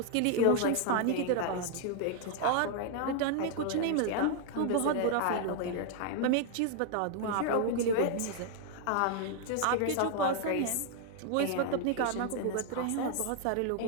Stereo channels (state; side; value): different; both; correlation 0.00